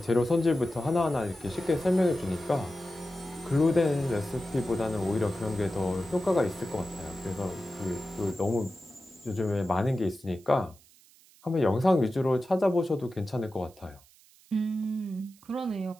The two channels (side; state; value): right; noise; hiss, 27 dB below the sound